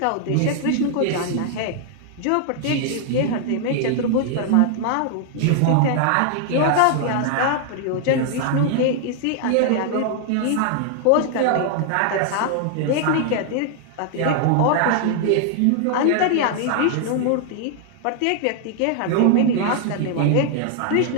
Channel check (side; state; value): both; different; correlation 0.00